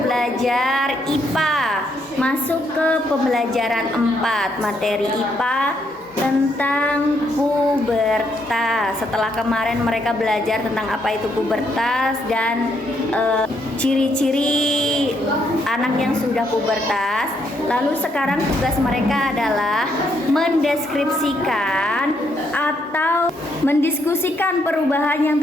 IPA, masuk ke pembelajaran 4, materi IPA tentang pubertas. Setelah kemarin mereka belajar tentang apa itu pubertas dan ciri-ciri anak yang sudah pubertas. Lalu sekarang tugas mereka adalah mendeskripsikan atau mendiskusikan perubahan yang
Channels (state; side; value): normal; both; correlation 0.74